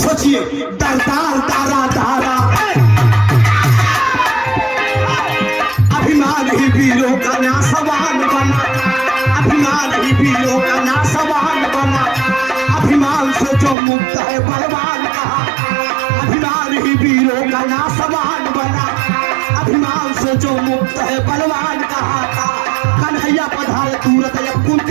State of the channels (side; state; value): left; drops out; at 13.8 s